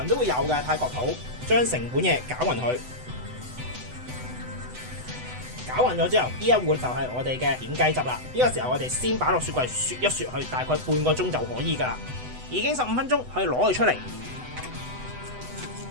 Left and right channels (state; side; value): late; left; 8.0 ms